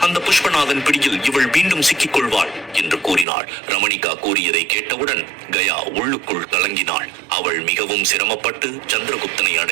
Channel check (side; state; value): left; drops out; at 3.2 s